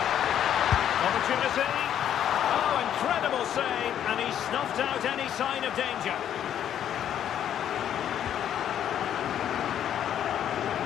Opportunity. Oh, incredible save, and he snuffed out any sign of danger.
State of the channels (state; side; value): quieter; right; 10.0 dB